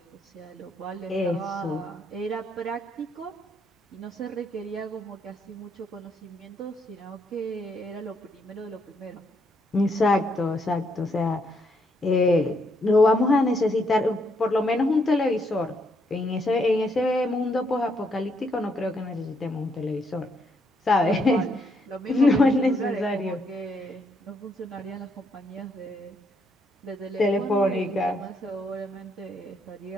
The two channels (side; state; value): both; normal; correlation 0.74